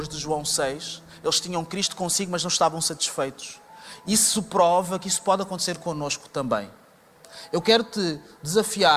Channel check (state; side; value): identical; both; correlation 1.00